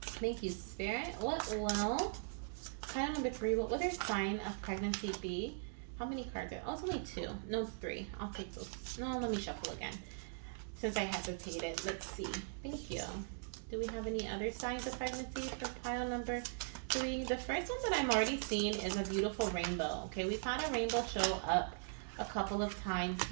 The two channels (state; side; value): silent; left; digital silence